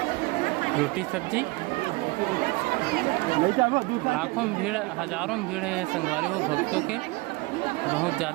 रोटी सब्जी। लाखों में भीड़ हजारों में भीड़ है संगवारी हो भक्तों के बहुत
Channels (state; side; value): quieter; left; 23.7 dB